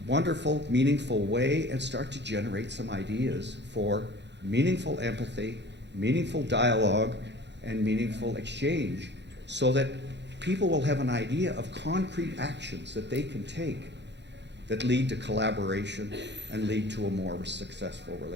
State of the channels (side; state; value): left; late; 0.51 ms